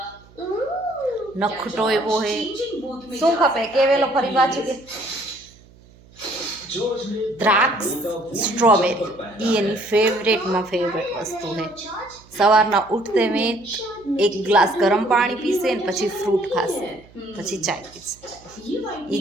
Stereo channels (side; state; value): right; noise; hum, 26 dB below the sound